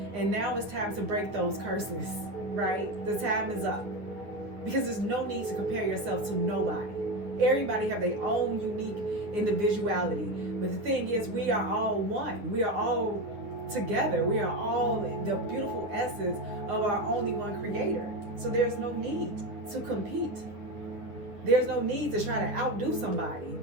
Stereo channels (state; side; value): late; left; 9.6 ms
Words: And now it's time to break those curses, right? The time is up. Because there's no need to compare yourself to nobody. Everybody have their own unique individuality. But the thing is, we are all one. We are all together. We are all the beautiful essence of our only one Creator. So there's no need to compete. There's no need to try to outdo somebody.